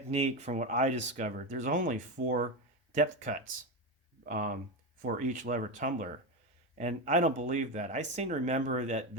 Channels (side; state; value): both; normal; correlation 0.15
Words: from what I discovered, there's only 4 depth cuts for each lever tumbler. And I don't believe that. I seem to remember that